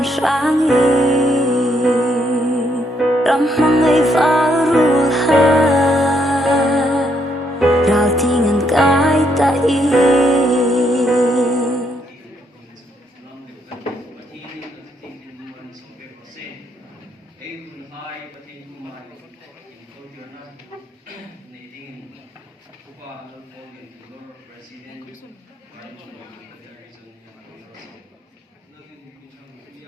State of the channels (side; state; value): both; normal; correlation 0.74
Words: sáng y Ram mong ngay phá rùa ha Rào tingan cái ta y